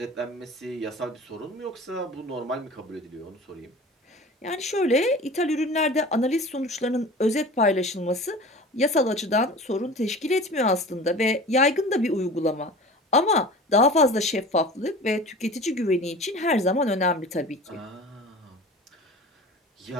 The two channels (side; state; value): both; normal; correlation 0.38